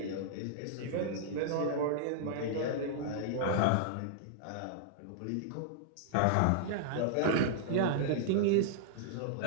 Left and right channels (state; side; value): different; both; correlation -0.01